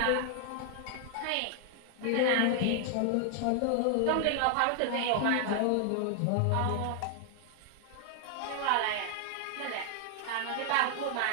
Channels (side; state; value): both; different; correlation 0.00